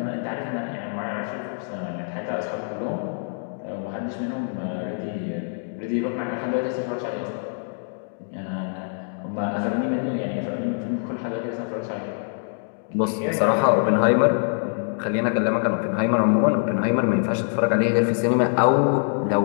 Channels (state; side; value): silent; right; 60 dB below the other